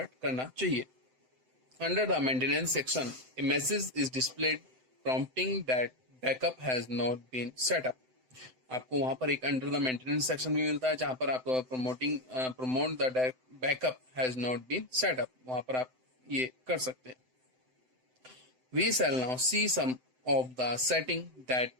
करना चाहिए। Under the maintenance section a message is displayed prompting that backup has not been set up. आपको वहां पर एक अंडर द मेंटेनेंस सेक्शन भी मिलता है, जहां पर आपको promote the backup has not been set up, वहां पर आप ये कर सकते हैं। We shall now see some of the setting that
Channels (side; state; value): left; late; 7.8 ms